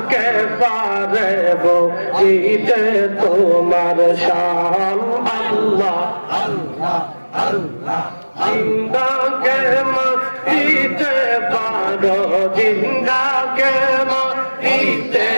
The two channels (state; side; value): inverted; both; correlation -1.00